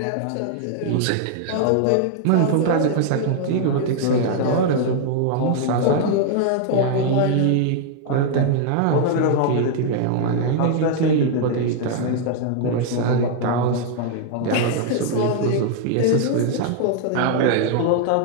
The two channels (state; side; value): different; both; correlation 0.00